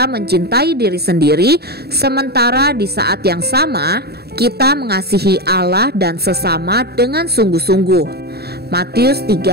mencintai diri sendiri, sementara di saat yang sama kita mengasihi Allah dan sesama dengan sungguh-sungguh. Matius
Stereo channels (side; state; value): left; late; 0.47 ms